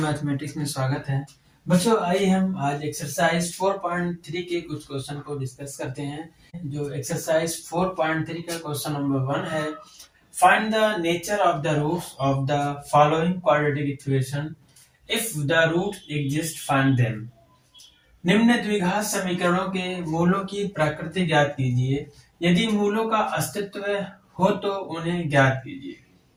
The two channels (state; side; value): identical; both; correlation 1.00